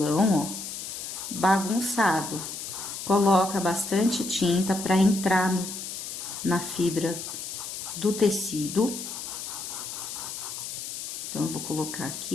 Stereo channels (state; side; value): noise; left; hiss, 7 dB below the sound